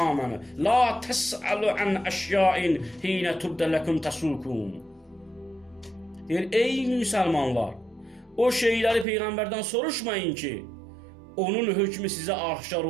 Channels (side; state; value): left; drops out; at 9.1 s